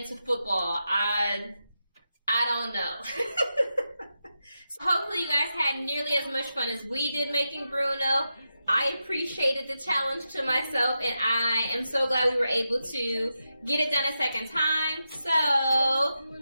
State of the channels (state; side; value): inverted; both; correlation -0.88